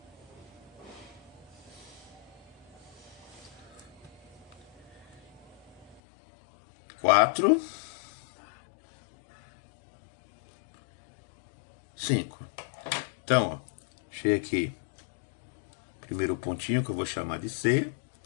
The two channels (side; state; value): right; drops out; at 6.0 s